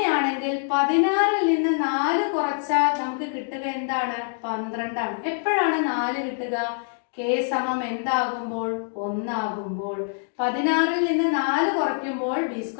16ൽ നിന്ന് 4 കുറച്ചാൽ നമുക്ക് കിട്ടുക എന്താണ്? 12 ആണ്. എപ്പോഴാണ് 4 കിട്ടുക? k സമം എന്താകുമ്പോൾ? 1 ആകുമ്പോൾ. 16ൽ നിന്ന് 4 കുറയ്ക്കുമ്പോൾ ബി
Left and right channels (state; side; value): silent; right; digital silence